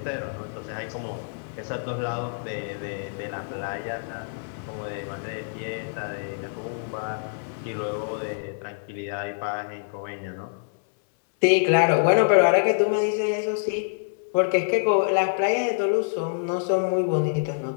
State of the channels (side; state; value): right; silent; 61 dB below the other